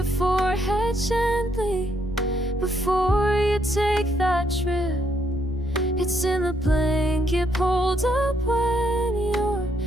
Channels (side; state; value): left; noise; rumble, 17 dB below the sound